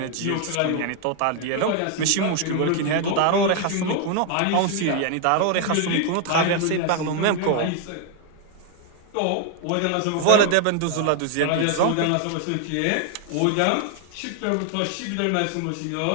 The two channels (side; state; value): both; different; correlation 0.00